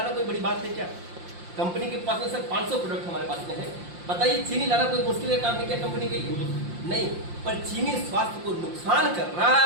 कोई बड़ी बात है क्या? कंपनी के पास में सर 500 प्रोडक्ट हमारे पास में है। बताइए चीनी लाना कोई मुश्किल काम है क्या कंपनी के लिए? नहीं, पर चीनी स्वास्थ्य को नुकसान कर रहा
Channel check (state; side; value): late; left; 5.7 ms